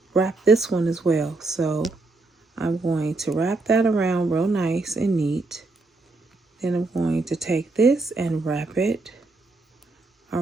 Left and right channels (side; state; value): left; quieter; 3.4 dB